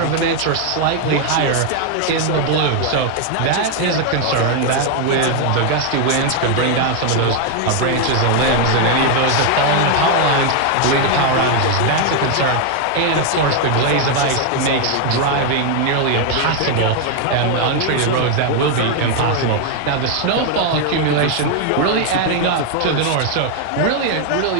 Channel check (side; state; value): both; different; correlation 0.01